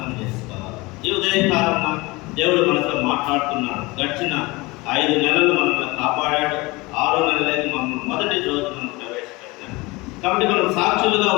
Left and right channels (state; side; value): quieter; right; 23.2 dB